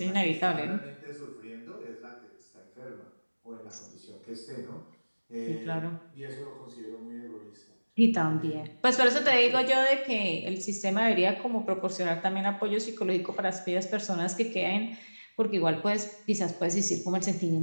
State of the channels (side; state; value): both; inverted; correlation -1.00